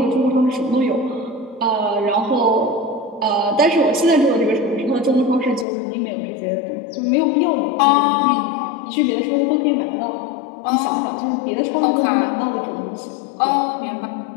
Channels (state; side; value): drops out; right; at 5.7 s